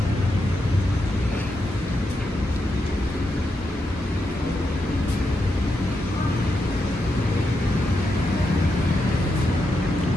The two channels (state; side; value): normal; both; correlation 0.85